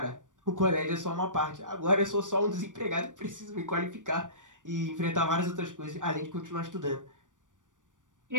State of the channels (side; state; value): left; late; 0.87 ms